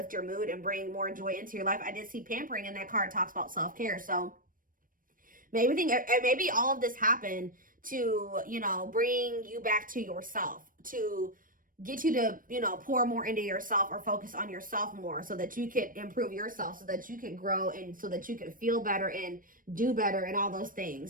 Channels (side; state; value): left; late; 0.40 ms